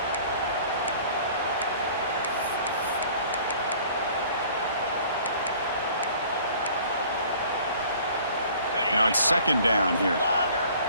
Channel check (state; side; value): inverted; both; correlation -0.51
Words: Now it's second down here.